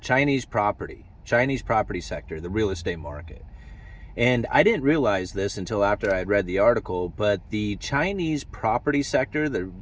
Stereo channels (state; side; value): identical; both; correlation 1.00